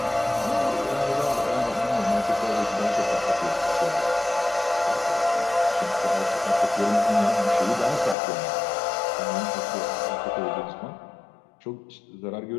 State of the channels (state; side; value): drops out; right; at 8.2 s